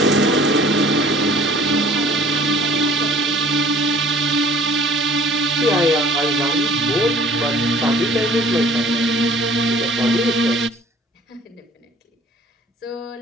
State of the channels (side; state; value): both; normal; correlation 0.51